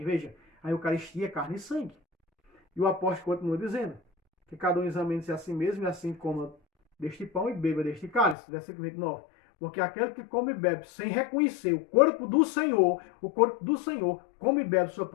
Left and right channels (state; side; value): drops out; right; at 8.3 s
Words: Veja, a Eucaristia é carne e sangue. E o apóstolo continua dizendo que cada um examine-se a si mesmo e assim coma deste pão e beba deste cálice. Versículo 29. Porque aquele que come e bebe sem reconhecer o corpo do Senhor come e bebe sua